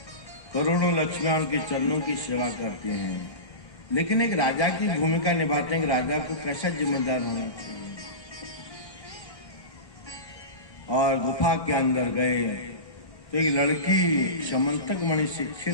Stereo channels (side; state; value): right; late; 1.3 ms